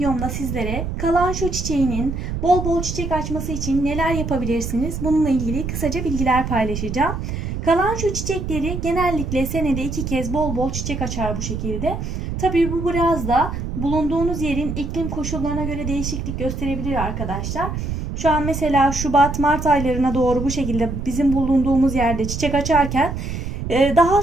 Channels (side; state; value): right; noise; rumble, 4 dB below the sound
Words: sizlere kalanço çiçeğinin bol bol çiçek açması için neler yapabilirsiniz? Bununla ilgili kısaca bilgiler paylaşacağım. Kalanço çiçekleri genellikle senede 2 kez bol bol çiçek açar bu şekilde. Tabii bu biraz da bulunduğunuz yerin iklim koşullarına göre değişiklik gösterebilir arkadaşlar. Şu an mesela Şubat-Mart aylarına doğru bu şekilde bizim bulunduğumuz yerde çiçek açarken daha